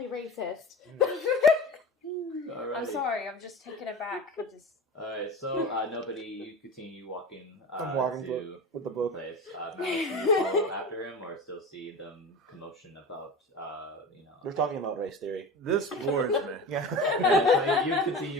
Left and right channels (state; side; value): normal; both; correlation 0.31